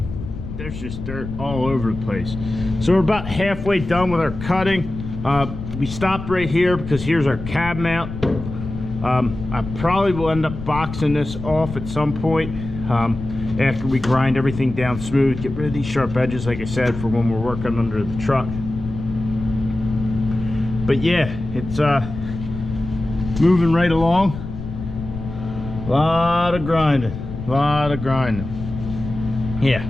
There's just dirt all over the place. So we're about halfway done with our cutting. We stopped right here because here's our cab mount. I probably will end up boxing this off at some point after we grind everything down smooth, get rid of these sharp edges, like I said, for when we're working under the truck. But yeah, it's moving right along. A lot of grinding, yeah.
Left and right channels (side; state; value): left; noise; rumble, 9 dB below the sound